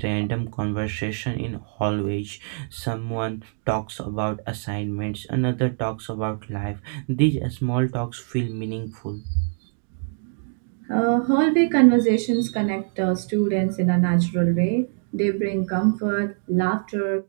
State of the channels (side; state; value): left; silent; digital silence